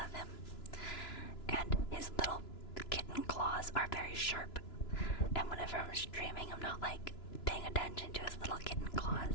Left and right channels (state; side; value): late; right; 2.9 ms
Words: him. And his little kitten claws are very sharp. And whenever I'm streaming, I'm not like paying attention to his little kitten